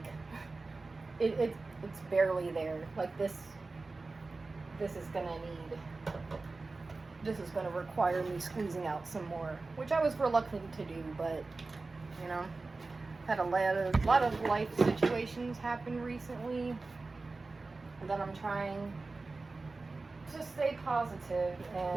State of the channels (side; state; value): left; quieter; 3.6 dB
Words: it's barely there. Like this is gonna require me squeezing out some more, which I was reluctant to do, but you know, had a lot of life situations happen recently that I'm trying to stay positive,